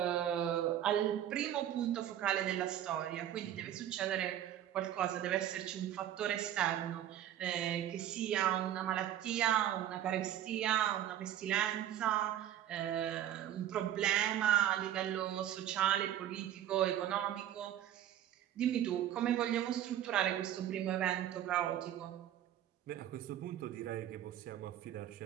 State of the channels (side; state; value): left; quieter; 11.4 dB